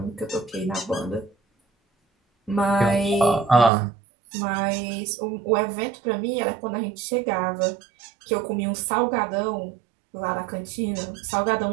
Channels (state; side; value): drops out; left; at 3.7 s